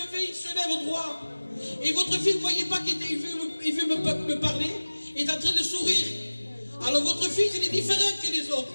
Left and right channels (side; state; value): both; inverted; correlation -1.00